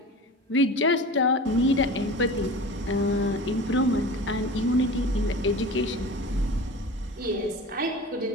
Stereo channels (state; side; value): normal; both; correlation 0.35